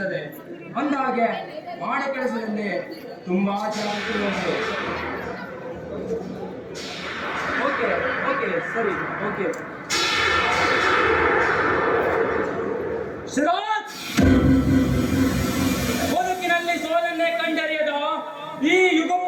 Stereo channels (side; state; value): both; identical; correlation 1.00